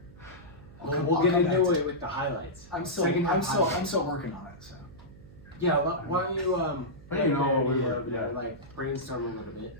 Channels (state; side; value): noise; right; hum, 21 dB below the sound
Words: we'll get into it with the highlights. I'm still working on it. So Yeah, why don't you But you know, we yeah, were, yeah. like brainstorm a little bit,